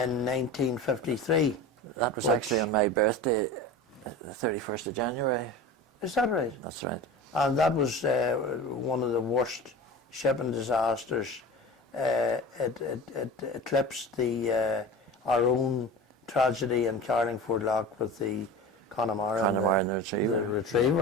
That was actually on my birthday, the 31st of January. Is that right? That's right. And that was one of the worst shipping disasters. It eclipsed our own tragedy in Carlingford Lock with the Connemara and the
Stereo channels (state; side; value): normal; both; correlation 0.33